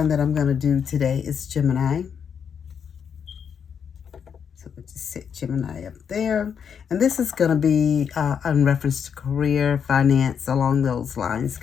that I'm going to do today is Gemini. So we'll just set Gemini up there. And this is going to be in reference to career, finance, along those lines,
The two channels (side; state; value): right; quieter; 7.3 dB